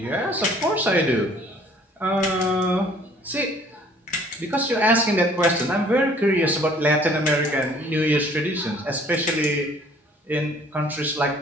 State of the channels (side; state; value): both; normal; correlation 0.56